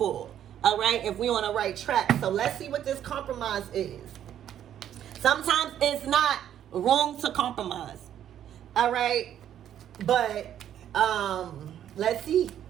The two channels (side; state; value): left; quieter; 10.5 dB